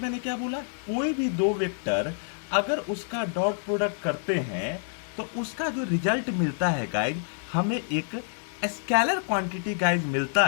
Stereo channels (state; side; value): silent; right; digital silence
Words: मैंने क्या बोला, कोई भी दो वेक्टर अगर उसका डॉट प्रोडक्ट करते हैं तो उसका जो रिजल्ट मिलता है गाइज हमें एक स्केलर क्वांटिटी गाइज मिलता